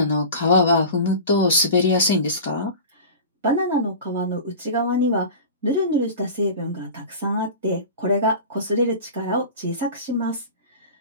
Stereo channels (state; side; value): inverted; both; correlation -0.34